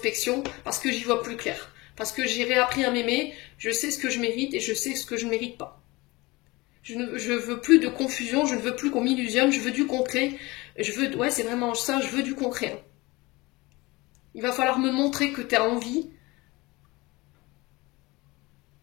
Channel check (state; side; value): quieter; right; 22.8 dB